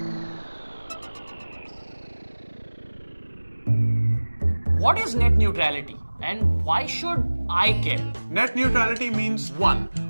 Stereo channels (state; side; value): inverted; both; correlation -1.00